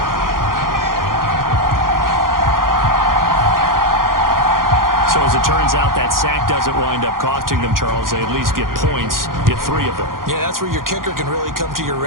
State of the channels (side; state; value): left; late; 0.91 ms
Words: So as it turns out, that sack doesn't wind up costing them, Charles. They at least get points, get 3 of them. Yeah, that's where your kicker can really come to your